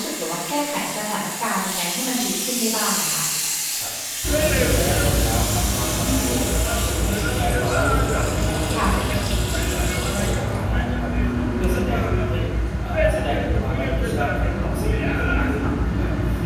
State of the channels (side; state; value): both; identical; correlation 1.00